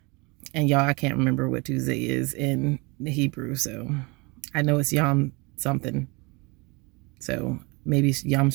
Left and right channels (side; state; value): left; quieter; 27.6 dB